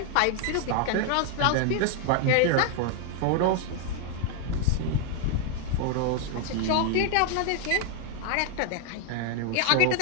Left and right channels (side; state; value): both; different; correlation 0.00